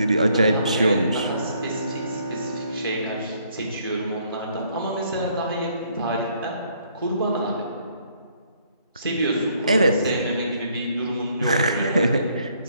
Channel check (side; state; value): both; inverted; correlation -0.67